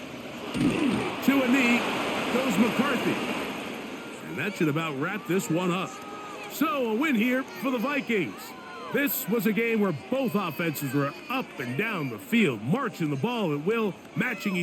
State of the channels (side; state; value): both; identical; correlation 1.00